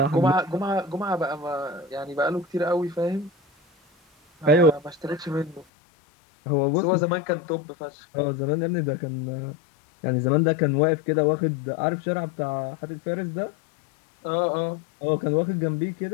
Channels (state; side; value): drops out; right; at 5.7 s